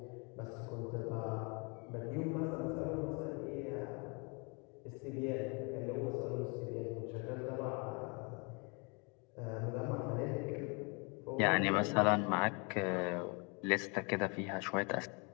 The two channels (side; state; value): right; quieter; 32.2 dB